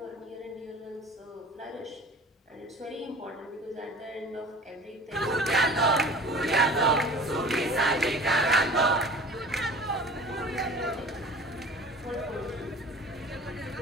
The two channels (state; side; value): normal; both; correlation 0.42